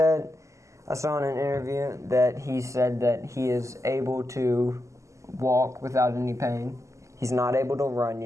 I saw in an interview that he said that he is able to walk without any pain. He's not able to run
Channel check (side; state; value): left; late; 0.15 ms